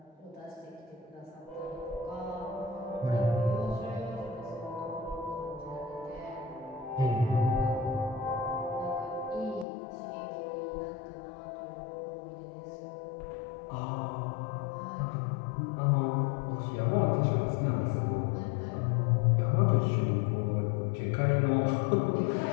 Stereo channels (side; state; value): right; drops out; at 9.7 s